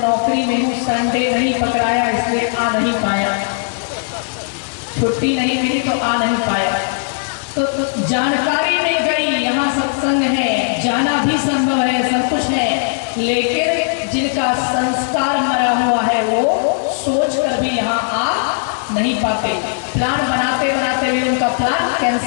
में हूँ, संडे नहीं पकड़ाया इसलिए आ नहीं पाया, छुट्टी नहीं मिली तो आ नहीं पाया। तो जानकारी मिल गई यहाँ सत्संग है, जाना भी संभव है, सब कुछ है, लेकिन जिनका संस्कार मरा हुआ है वो सोच कर भी यहाँ आ नहीं पाते। प्लान बनाते बनाते भी उनका प्लान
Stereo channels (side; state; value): right; silent; digital silence